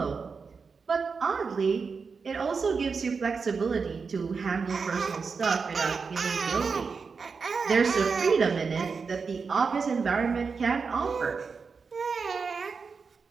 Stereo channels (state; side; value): quieter; left; 5.2 dB